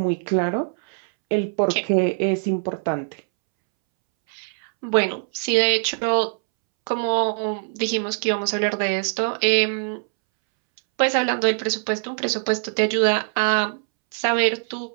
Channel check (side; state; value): left; silent; 64 dB below the other